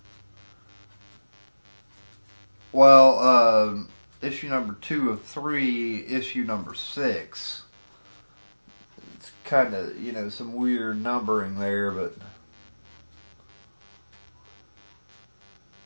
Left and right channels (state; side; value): inverted; both; correlation -1.00